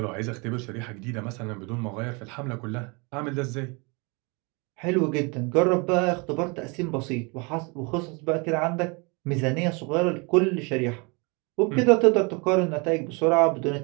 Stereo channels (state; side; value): quieter; left; 30.1 dB